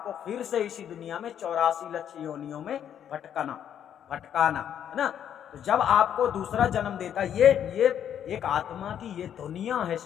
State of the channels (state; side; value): quieter; right; 9.4 dB